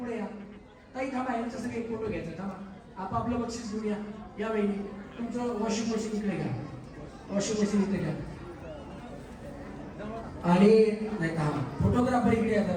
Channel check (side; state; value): both; identical; correlation 1.00